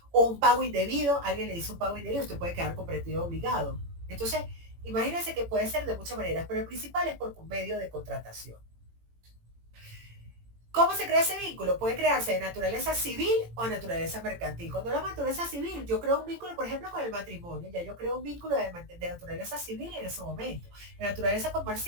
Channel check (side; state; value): left; late; 18 ms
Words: O un pago indebido, alguien le dice un pago indebido, usted puede quedar comprometido obligado. Entonces, imagínense que puede ser de muchas maneras, pero el principal es por un medio de contratación. ¿Cómo se crea ese vínculo? Puede crearse de naturaleza civil o de naturaleza mercantil. Cuando la naturaleza civil, yo creo un vínculo, por ejemplo, con el matrimonio, ya yo creo un vínculo de naturaleza civil en ese momento. De naturaleza